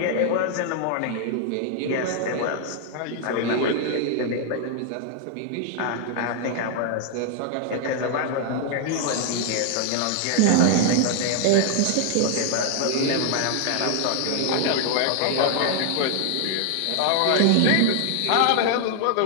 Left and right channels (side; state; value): both; different; correlation 0.00